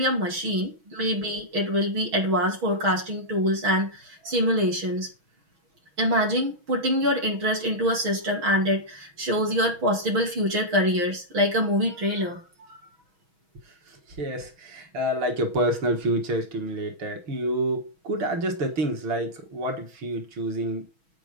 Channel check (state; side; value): late; left; 6.2 ms